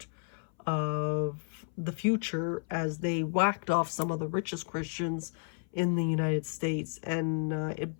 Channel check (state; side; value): silent; right; 56 dB below the other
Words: of the future as they whacked off some of the richest Christians in the United States, and it